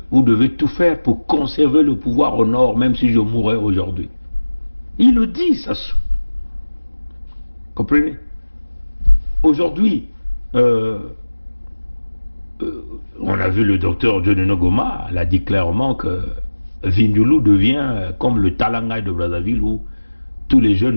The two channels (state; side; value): inverted; both; correlation -1.00